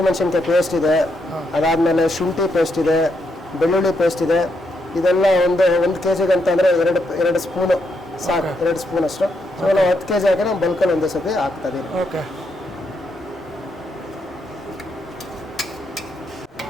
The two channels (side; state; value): both; normal; correlation 0.79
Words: ಪೇಸ್ಟ್ ಇದೆ, ಅದಾದಮೇಲೆ ಶುಂಠಿ ಪೇಸ್ಟ್ ಇದೆ, ಬೆಳ್ಳುಳ್ಳಿ ಪೇಸ್ಟ್ ಇದೆ. ಇದೆಲ್ಲ ಒಂದು 1 kgಗೆ ಅಂತ ಅಂದರೆ 2 ಸ್ಪೂನು ಸಾಕು, 2 ಸ್ಪೂನ್ ಅಷ್ಟು. ಸೊ ನಾವು 10 kg ಹಾಕಿ ನಾವು ಬಲ್ಕಲ್ಲಿ ಒಂದೇ ಸತಿ ಹಾಕ್ತಾ ಇದೀವಿ.